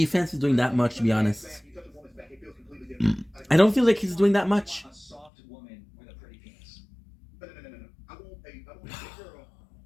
is doing that much, to be honest. You touch a woman's back, it feels completely different. I don't feel like he's doing that much. A soft woman with a pretty penis. No. I want a girl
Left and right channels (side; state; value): right; drops out; at 5.3 s